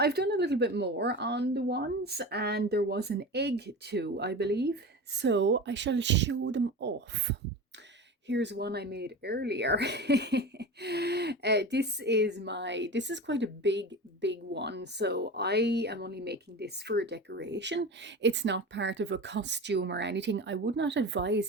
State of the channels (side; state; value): both; normal; correlation 0.29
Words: done a little bit more on the wands and there was an egg too, I believe. So I shall show them off. Here's one I made earlier. This is quite a big one. So I am only making this for a decoration. It's not part of a costume or anything. I would not advise